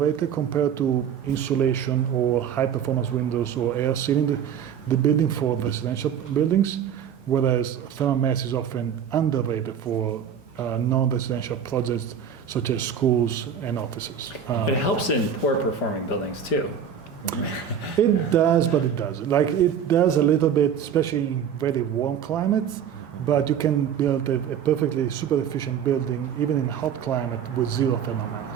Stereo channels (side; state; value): left; quieter; 8.2 dB